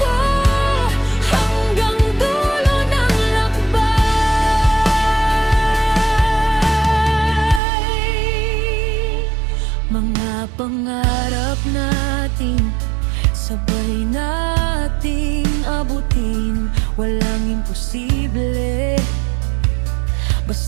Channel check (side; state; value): left; drops out; at 7.6 s